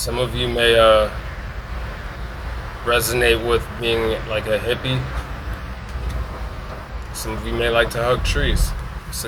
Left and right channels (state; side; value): identical; both; correlation 1.00